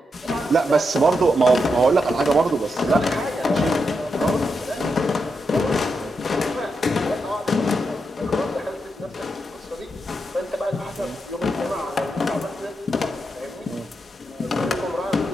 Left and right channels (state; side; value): normal; both; correlation 0.84